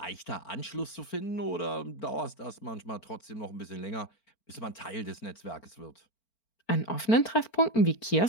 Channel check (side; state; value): right; late; 4.4 ms